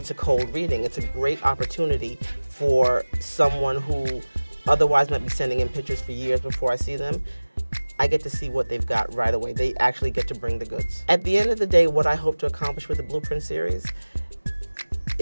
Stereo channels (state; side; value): inverted; both; correlation -1.00